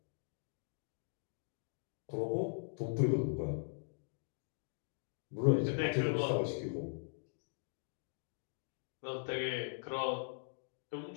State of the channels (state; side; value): silent; right; digital silence